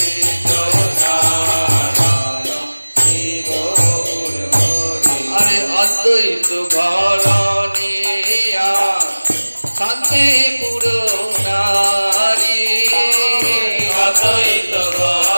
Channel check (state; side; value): inverted; both; correlation -1.00